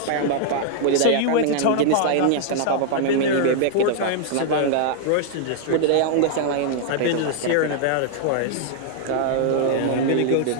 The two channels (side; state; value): both; different; correlation -0.01